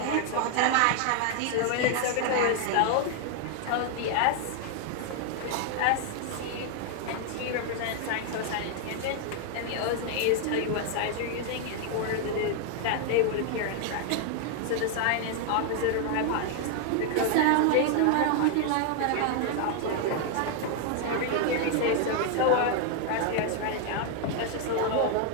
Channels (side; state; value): both; different; correlation 0.00